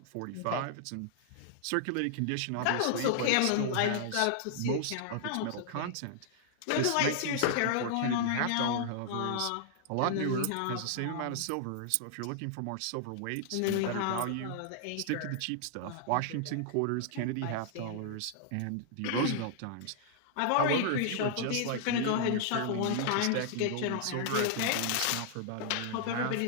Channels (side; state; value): both; different; correlation -0.01